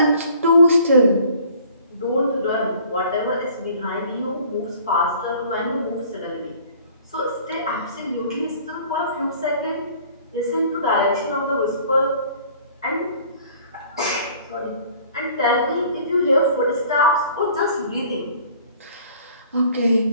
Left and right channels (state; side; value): inverted; both; correlation -0.53